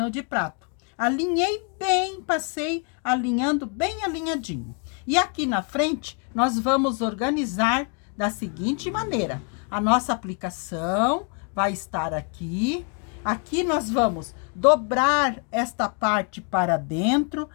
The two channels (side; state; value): right; quieter; 37.1 dB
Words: de prato. Alinhei bem, passei alinhando bem alinhadinho. E aqui na frente, nós vamos organizar da seguinte maneira. A nossa aplicação vai estar aqui. Aqui nós vamos dobrar esta parte para dentro,